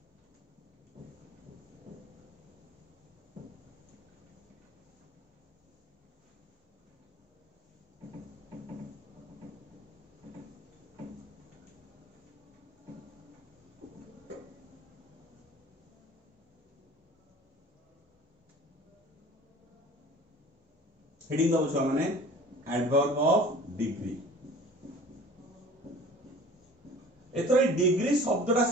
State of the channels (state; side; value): normal; both; correlation 0.44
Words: हेडिंग दबो छुआ माने एडवर्ब ऑफ डिग्री एतरे डिग्री शब्दटा